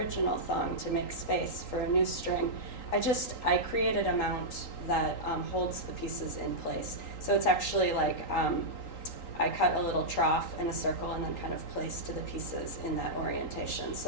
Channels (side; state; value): right; late; 3.8 ms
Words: thong to make space for a new string, I created a mount that holds the pieces in place. So it's actually I cut a little trough in a circle and then kind of placed the pieces in that orientation.